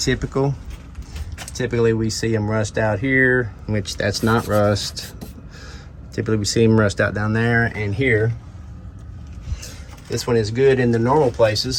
Typically we see them rust out here, which that's not rust. Typically we see them rust out down there and here. This one is good in the normal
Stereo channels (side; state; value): both; identical; correlation 1.00